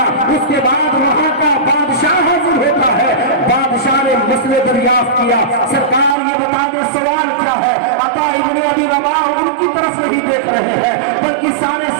اس کے بعد وہاں کا بادشاہ حاضر ہوتا ہے. بادشاہ نے مسئلے دریافت کیا, سرکار یہ بتا دیں سوال کیا ہے. عطا ابن ابی رباح ان کی طرف نہیں دیکھ رہے ہیں بلکہ سارے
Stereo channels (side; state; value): left; drops out; at 6.2 s